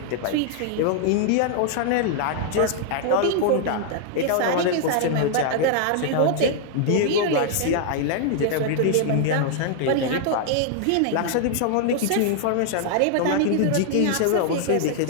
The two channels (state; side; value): different; both; correlation 0.00